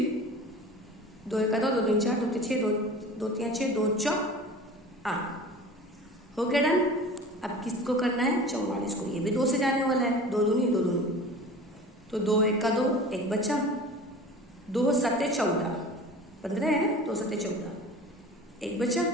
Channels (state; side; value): normal; both; correlation 0.39